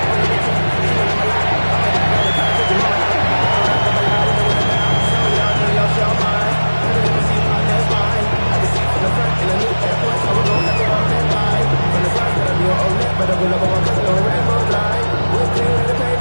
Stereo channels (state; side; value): inverted; both; correlation -1.00